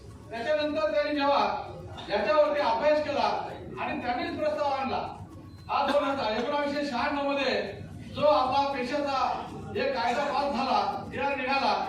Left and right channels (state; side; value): identical; both; correlation 1.00